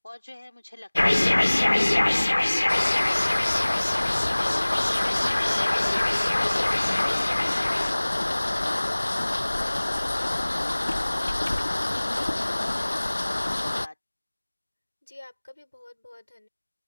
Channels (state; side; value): inverted; both; correlation -1.00